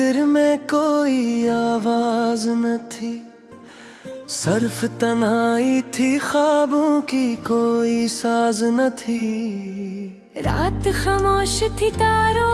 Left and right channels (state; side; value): identical; both; correlation 1.00